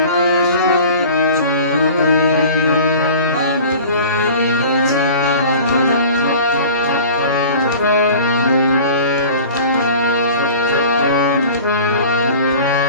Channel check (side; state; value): both; inverted; correlation -0.41